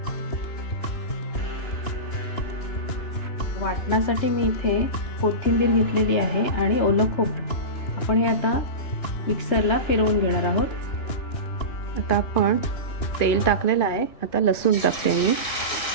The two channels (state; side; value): late; right; 2.9 ms